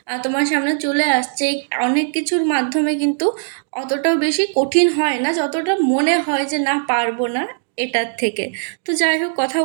তোমার সামনে চলে আসছে। অনেক কিছুর মাধ্যমে কিন্তু অতটাও বেশি কঠিন হয় না যতটা মনে হয় যে না পারবো না এটার থেকে। তো যাই হোক, কথা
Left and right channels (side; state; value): left; silent; digital silence